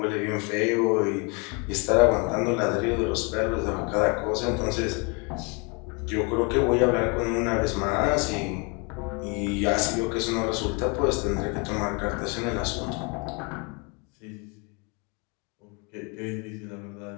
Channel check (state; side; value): quieter; right; 32.4 dB